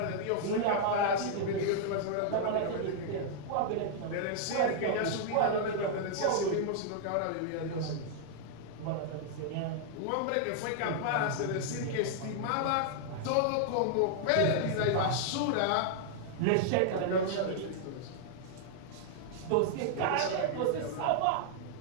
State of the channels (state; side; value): different; both; correlation -0.01